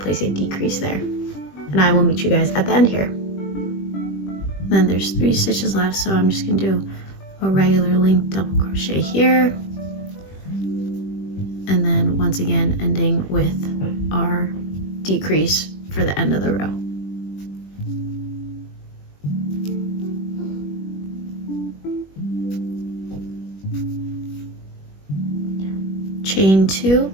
a decrease there. And I will meet you guys at the end here. Then there's 3 stitches left, so I'm just going to do a regular linked double crochet here. And then once again, ending with our decrease for the end of the row. Chain 2,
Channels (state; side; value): late; right; 21 ms